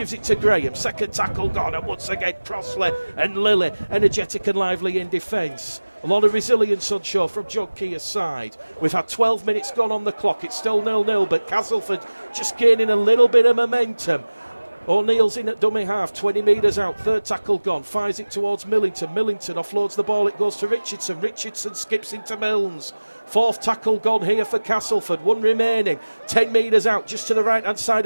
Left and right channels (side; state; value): both; inverted; correlation -1.00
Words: it to Graham, second tackle gone, and once again Crossley and Lilly energetic and lively in defence. A lot of resilience on show from John Keir's side. We've had 12 minutes gone on the clock, it's still 0-0, but Castleford just gaining a little bit of momentum. O'Neill's in at dummy half, 20 metres out, third tackle gone, fires it towards Millington. Millington offloads the ball, it goes to Richardson. Richardson skips into Milnes. Fourth tackle gone here for Castleford, 1 remaining, 10 metres out, just to the right hand side